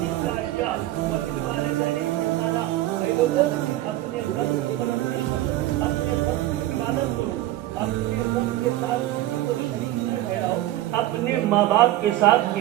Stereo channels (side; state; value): left; quieter; 15.4 dB